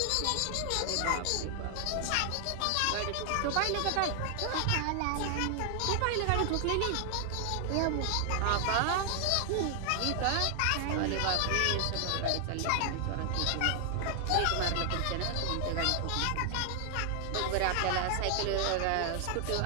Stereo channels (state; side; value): different; both; correlation 0.00